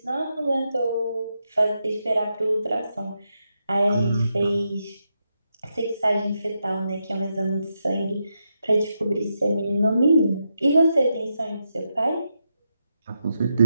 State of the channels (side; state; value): both; inverted; correlation -0.84